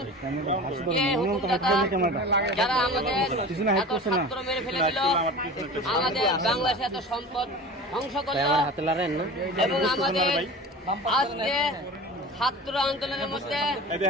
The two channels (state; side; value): normal; both; correlation 0.35